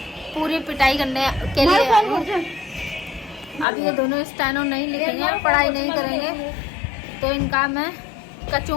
पूरी पिटाई करने के लिए आई हूं। अब ये दोनों स्टेनो नहीं लिखेंगे, पढ़ाई नहीं करेंगे तो इनका मैं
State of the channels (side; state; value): right; drops out; at 3.7 s